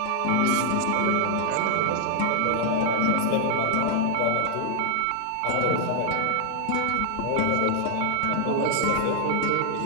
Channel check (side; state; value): both; different; correlation 0.00